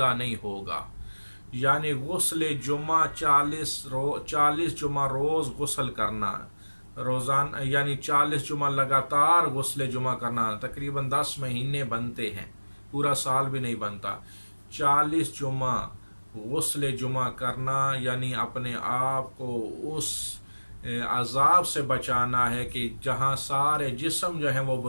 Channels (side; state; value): both; inverted; correlation -1.00